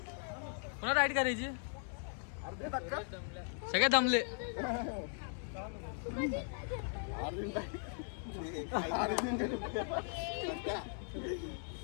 कोणा राईड करायची सगळे दमले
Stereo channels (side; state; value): right; silent; 52 dB below the other